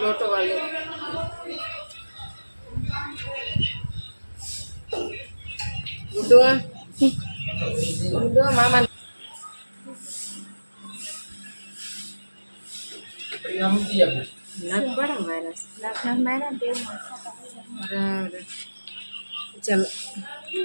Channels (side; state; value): both; inverted; correlation -1.00